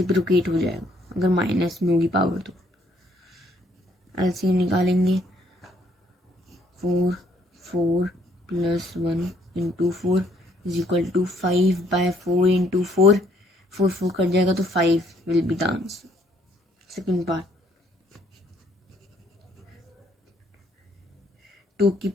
हो जाएगा अगर माइनस में होगी पावर तो। एलसीएम निकालेंगे 4 + 1 × 4 इज इक्वल टू 5/4 × 4, 4 कट जाएगा तो 5 will be the answer. Second part, 2 की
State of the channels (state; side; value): normal; both; correlation 0.67